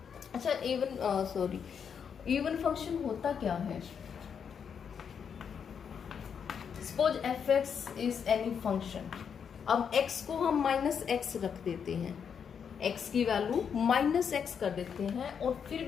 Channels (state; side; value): quieter; right; 7.1 dB